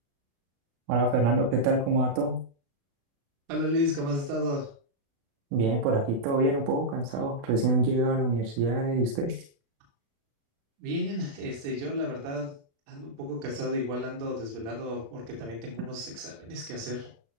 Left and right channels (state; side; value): late; left; 36 ms